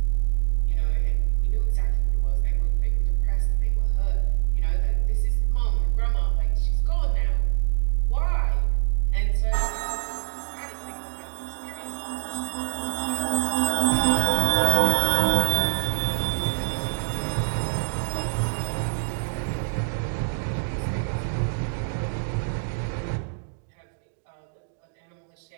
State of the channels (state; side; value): silent; left; digital silence